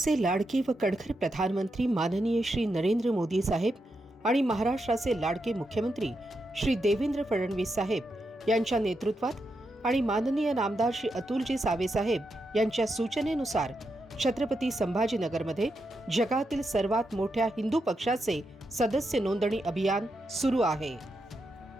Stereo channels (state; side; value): normal; both; correlation 0.85